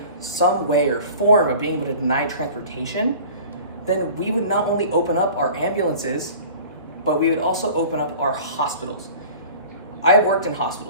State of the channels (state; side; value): inverted; both; correlation -0.43